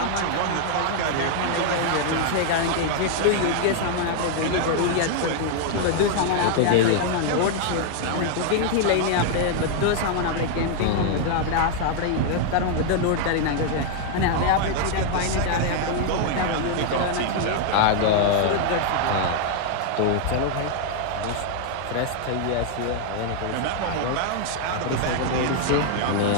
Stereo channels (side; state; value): both; different; correlation 0.00